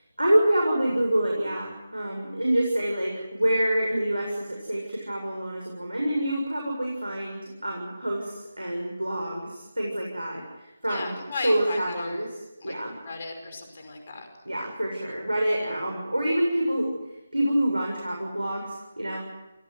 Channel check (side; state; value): both; inverted; correlation -0.94